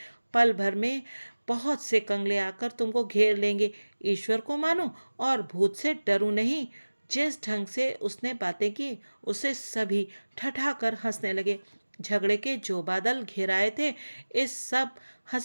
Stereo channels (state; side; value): inverted; both; correlation -1.00